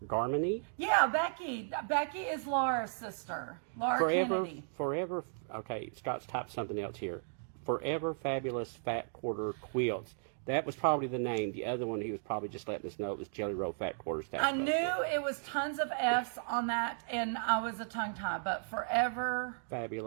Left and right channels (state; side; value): silent; left; digital silence